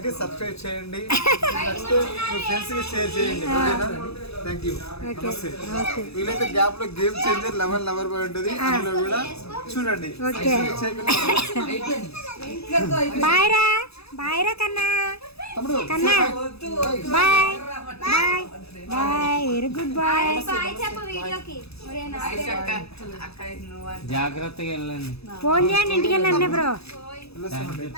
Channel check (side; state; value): right; late; 0.78 ms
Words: సబ్స్క్రైబ్ చేయండి. నచ్చితే మీ ఫ్రెండ్స్కి షేర్ చేయండి. ఓకేనా? Thank you. వీలైతే గ్యాప్ లో గేమ్ చేంజర్ 11 లవర్ బాయ్ ఉంటుంది. అందులో కూడా చూడండి. బాయ్ రా, బాయ్ రా కన్నా. కన్నా bye bye bye. Very good bye. జాగ్రత్తగా వెళ్ళండి. ఫోన్ చేయండి ఇంటికి వెళ్ళండి బ్రో. వెళ్ళొస్తామండి.